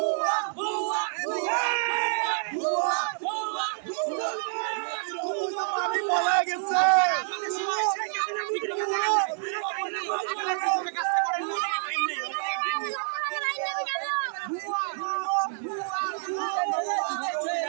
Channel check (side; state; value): left; silent; digital silence